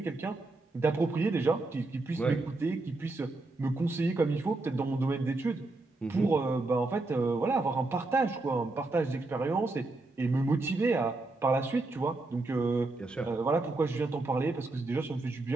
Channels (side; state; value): left; quieter; 3.1 dB